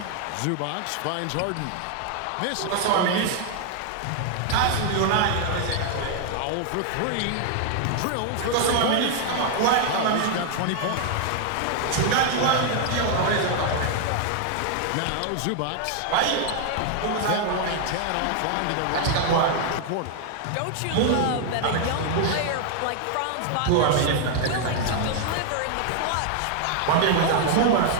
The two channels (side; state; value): both; different; correlation 0.00